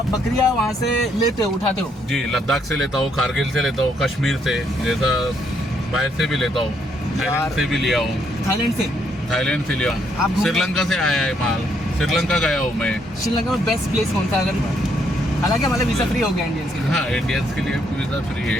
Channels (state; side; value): normal; both; correlation 0.72